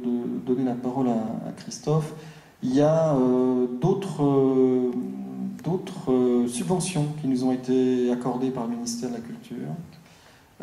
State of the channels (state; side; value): identical; both; correlation 1.00